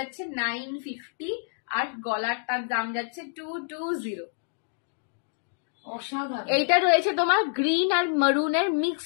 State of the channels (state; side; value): silent; right; digital silence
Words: 950, আর গলারটার দাম যাচ্ছে 220। অসাধারণ। এইটা রয়েছে তোমার গ্রিন আর মারুনের